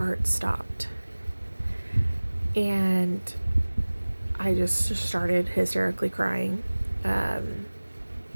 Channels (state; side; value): inverted; both; correlation -1.00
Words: stopped. And I just started hysterically crying.